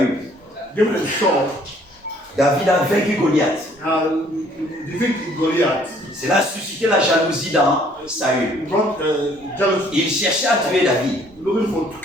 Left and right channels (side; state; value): both; normal; correlation 0.61